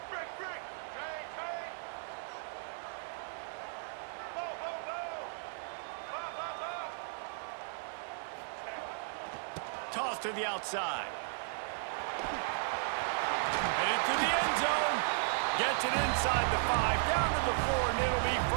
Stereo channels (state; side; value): silent; left; digital silence